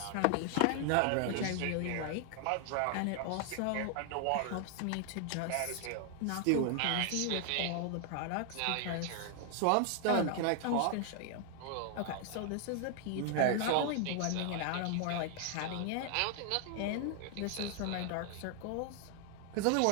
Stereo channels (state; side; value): different; both; correlation 0.00